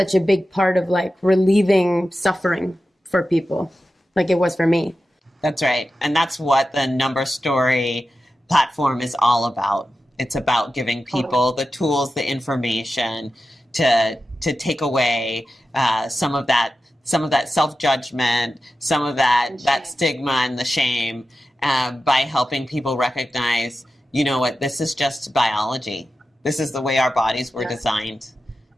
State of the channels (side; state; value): both; normal; correlation 0.92